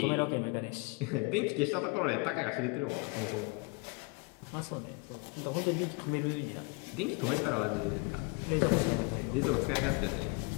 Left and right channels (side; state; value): right; quieter; 28.9 dB